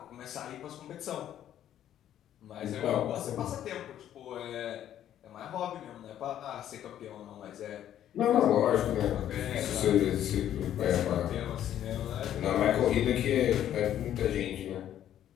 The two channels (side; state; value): right; quieter; 11.1 dB